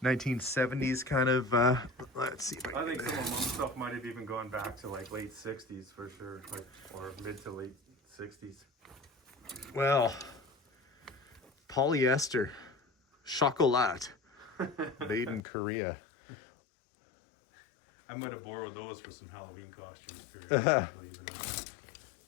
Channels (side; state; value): right; drops out; at 15.4 s